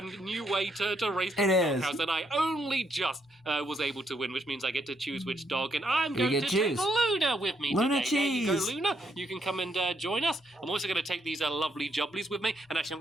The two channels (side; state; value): both; normal; correlation 0.75